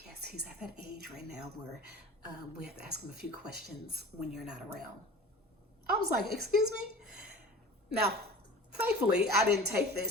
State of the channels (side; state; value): both; normal; correlation 0.39